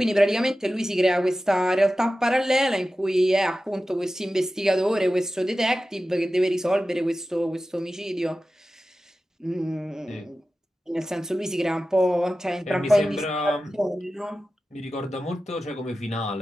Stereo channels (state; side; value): normal; both; correlation 0.94